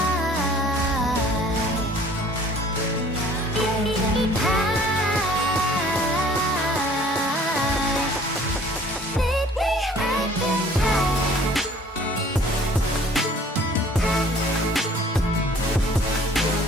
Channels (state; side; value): normal; both; correlation 0.53